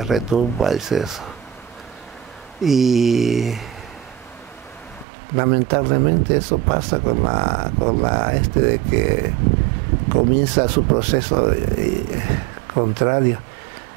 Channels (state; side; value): drops out; left; at 5.1 s